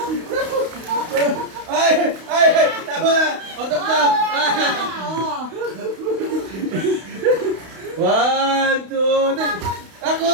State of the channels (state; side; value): late; left; 32 ms